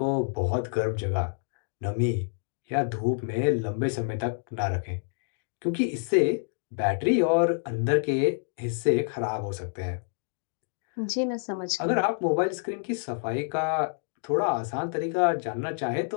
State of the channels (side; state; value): right; silent; digital silence